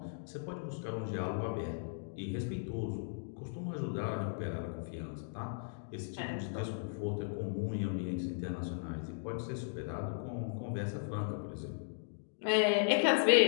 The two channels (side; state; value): right; silent; digital silence